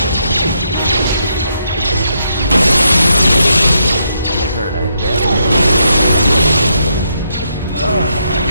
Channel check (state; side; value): inverted; both; correlation -0.78